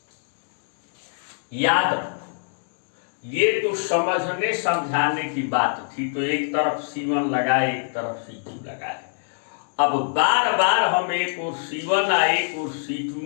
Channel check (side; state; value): right; silent; digital silence